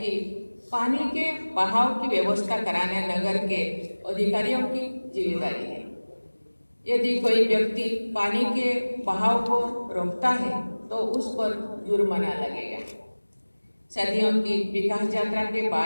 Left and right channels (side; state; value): both; inverted; correlation -1.00